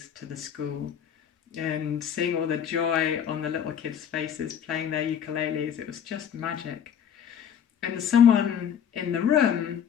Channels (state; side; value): quieter; right; 8.5 dB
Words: to the school. And seeing all the joy on the little kids' faces playing their ukuleles, it was just magic. And someone in the room